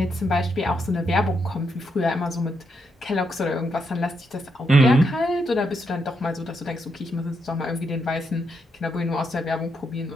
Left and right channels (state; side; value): normal; both; correlation 0.80